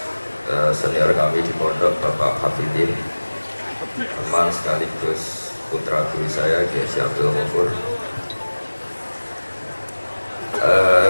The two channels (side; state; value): both; inverted; correlation -1.00